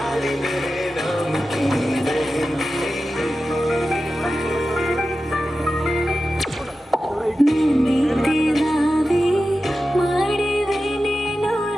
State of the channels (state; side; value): normal; both; correlation 0.93